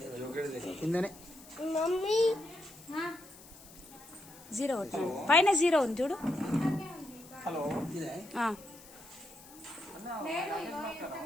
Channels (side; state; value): left; noise; hiss, 20 dB below the sound